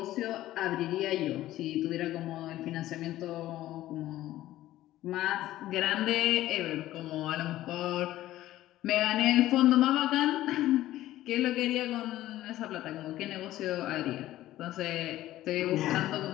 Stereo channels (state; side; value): quieter; right; 14.7 dB